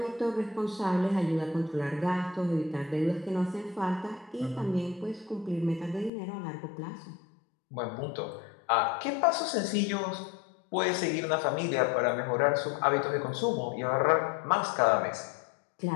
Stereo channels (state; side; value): drops out; right; at 6.1 s